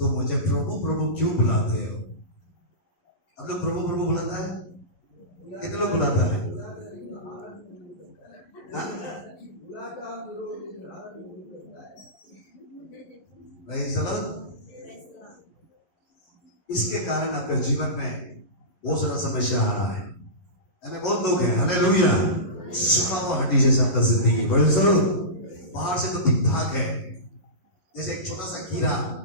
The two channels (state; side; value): late; right; 11 ms